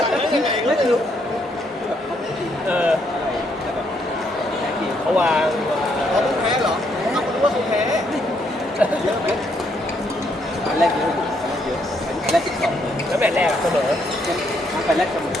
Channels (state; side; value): normal; both; correlation 0.73